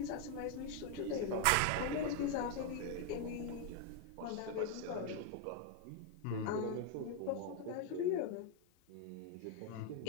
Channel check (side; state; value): both; different; correlation 0.01